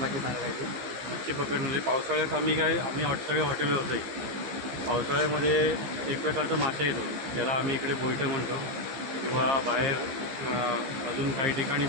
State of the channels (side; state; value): left; late; 15 ms